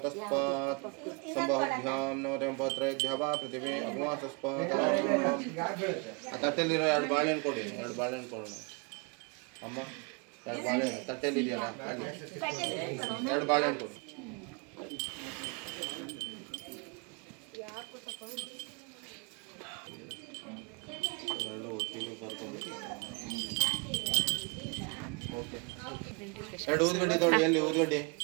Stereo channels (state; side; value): quieter; left; 32.8 dB